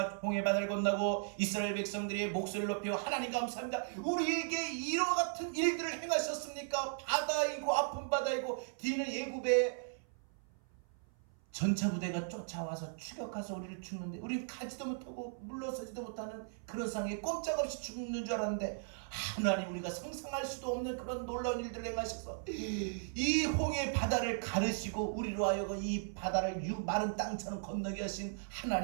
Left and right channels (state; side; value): silent; left; 53 dB below the other